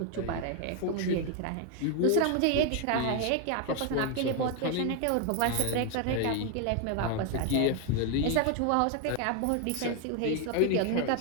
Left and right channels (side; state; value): both; different; correlation 0.01